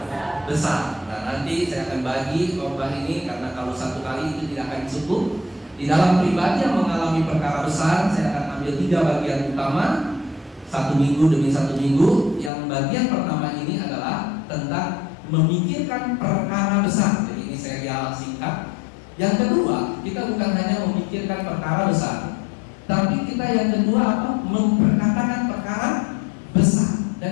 besar. Nah, nanti saya akan bagi khotbah ini, karena kalau satu kali itu tidak akan cukup. Di dalam pribadi yang mengalami perkara besar, saya akan ambil 3 bagian utama, satu minggu demi satu minggu. Yang bagian pertama ini adalah tentang memikirkan perkara besar. Jadi ini serial singkat. Yang kedua, kita bukan hanya memikirkan perkara besar, tapi kita yang kedua apa? Memperkatakan perkara besar.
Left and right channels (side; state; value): right; drops out; at 12.5 s